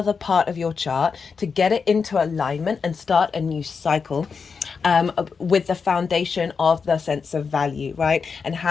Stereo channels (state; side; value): quieter; right; 5.5 dB